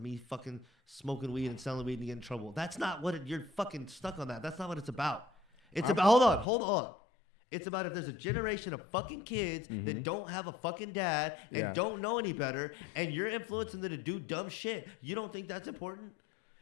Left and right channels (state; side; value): drops out; right; at 6.5 s